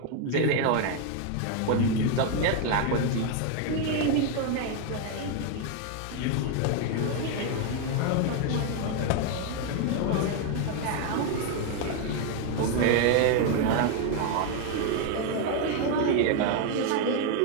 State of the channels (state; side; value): different; both; correlation 0.01